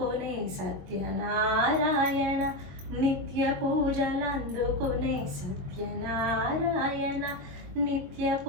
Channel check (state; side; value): late; left; 22 ms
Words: సత్యనారాయణ. నిత్య పూజలందుకొనే సత్యనారాయణ. నిత్య